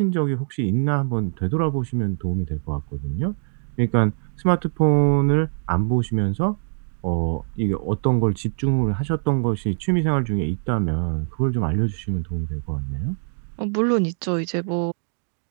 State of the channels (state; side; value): silent; left; digital silence